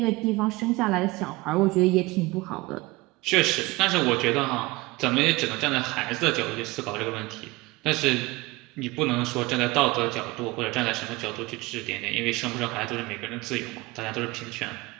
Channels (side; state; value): left; quieter; 21.7 dB